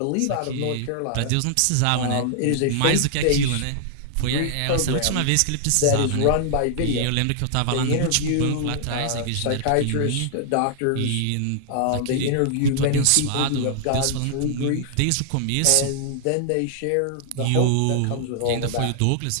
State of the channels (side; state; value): both; different; correlation -0.01